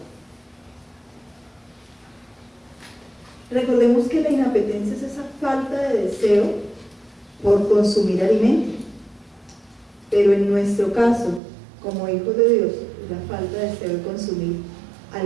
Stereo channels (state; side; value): drops out; left; at 11.4 s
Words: Recordemos que la inapetencia es esa falta de deseo por consumir alimento, pero en nuestro caso, como hijos de Dios, es la falta de deseo de consumir